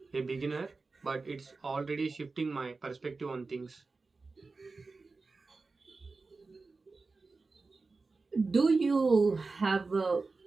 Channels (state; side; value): quieter; left; 3.9 dB